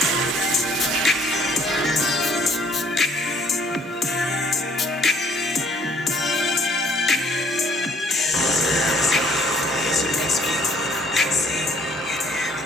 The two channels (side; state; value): both; normal; correlation 0.60